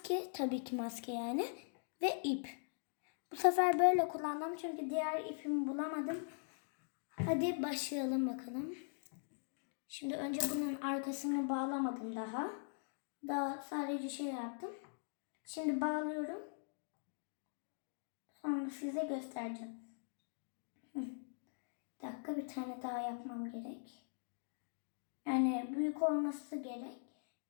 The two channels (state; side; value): silent; right; digital silence